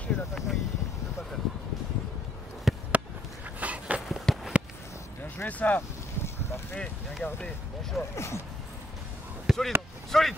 l'attaquant il ne peut pas faire. Bien joué ça. Parfait, bien gardé, bon choix. Solide, solide.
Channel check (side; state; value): both; normal; correlation 0.70